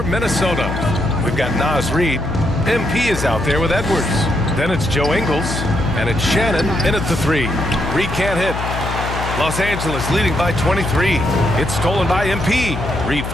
Minnesota, we've got Naz Reid. MP is out there with Edwards. Then it's Joe Ingles, and it's Shannon in at the 3. Reid can't hit. Los Angeles leading by 23. It's stolen by MP. Reid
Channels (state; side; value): noise; left; hum, 5 dB below the sound